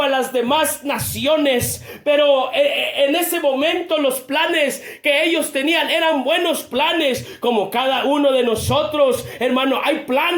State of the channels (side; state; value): both; identical; correlation 1.00